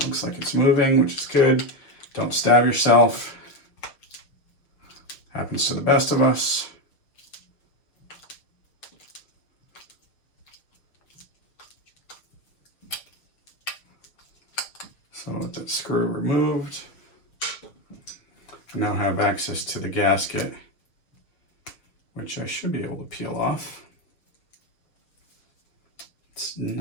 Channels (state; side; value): late; right; 6.5 ms